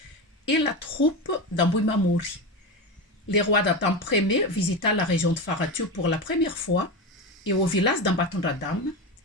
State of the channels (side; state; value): both; normal; correlation 0.19